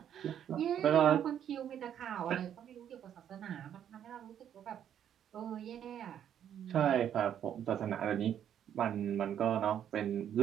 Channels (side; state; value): left; quieter; 9.7 dB